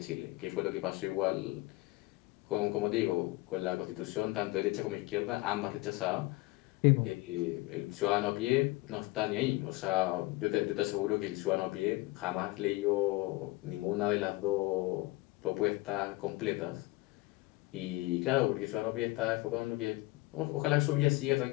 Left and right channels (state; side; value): quieter; right; 21.1 dB